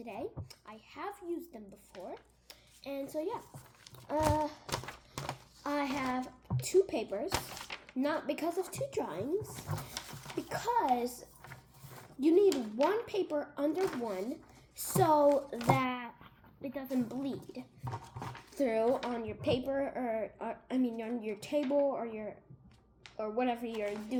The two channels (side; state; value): both; identical; correlation 1.00